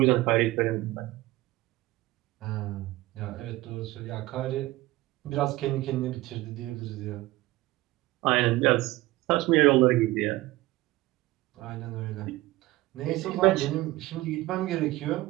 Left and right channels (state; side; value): quieter; left; 18.6 dB